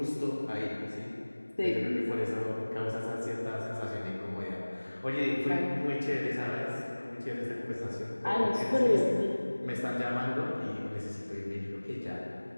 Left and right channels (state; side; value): inverted; both; correlation -1.00